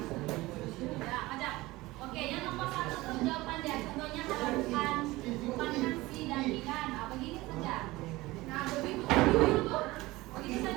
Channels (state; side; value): quieter; left; 19.7 dB